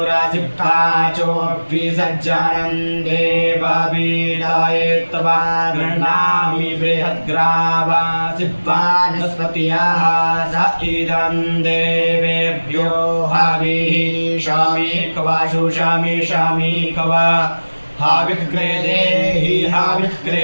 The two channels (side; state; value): both; inverted; correlation -1.00